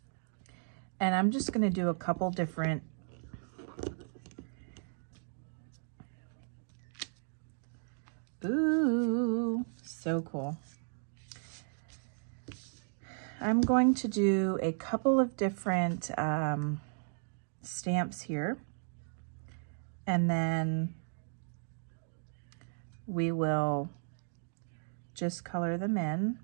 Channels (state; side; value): silent; left; digital silence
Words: And I'm just going to do a couple different Ooh, so cool. I'm going to do a couple of different stamps here, and then we will just color them in